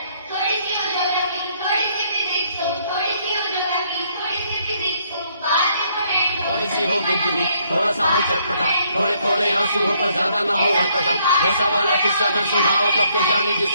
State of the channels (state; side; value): inverted; both; correlation -0.69